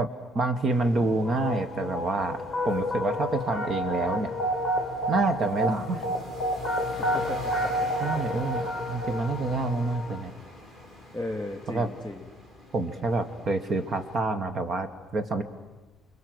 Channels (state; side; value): normal; both; correlation 0.60